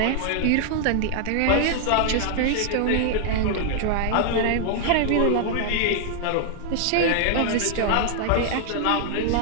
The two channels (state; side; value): different; both; correlation -0.01